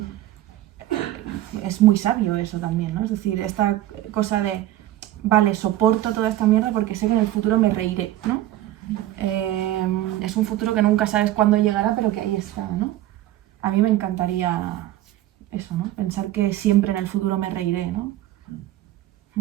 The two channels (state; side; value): quieter; left; 14.3 dB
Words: Es muy sabio eso también, ¿no? Es decir, esta cosa de, vale, soporto toda esta mierda porque sé que en el futuro me reiré, ¿no? Es un futuro que nunca sabes cuándo llegará, pero que ahí está, ¿no? A mí me encantaría eso, ¿no? Pensar que siempre en el futuro me reiré, ¿no?